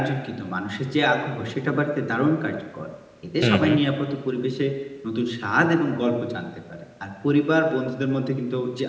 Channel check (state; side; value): identical; both; correlation 1.00